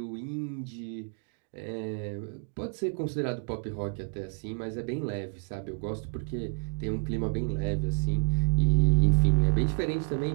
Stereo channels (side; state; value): left; silent; 58 dB below the other